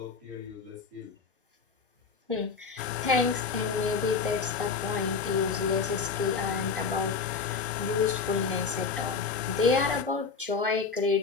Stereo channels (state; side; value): quieter; right; 5.2 dB